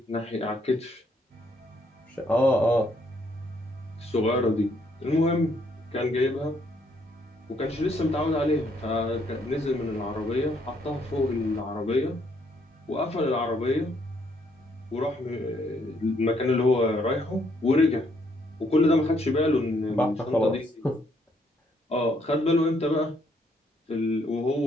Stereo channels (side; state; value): both; normal; correlation 0.70